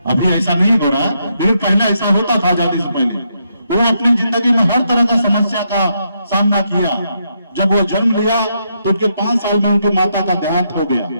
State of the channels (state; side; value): inverted; both; correlation -0.78